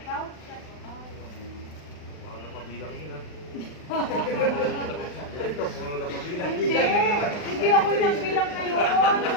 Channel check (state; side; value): late; right; 39 ms